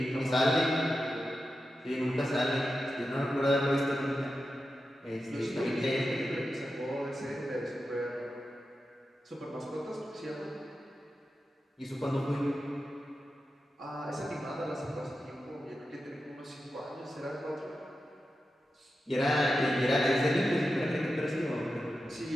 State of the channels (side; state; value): both; normal; correlation 0.91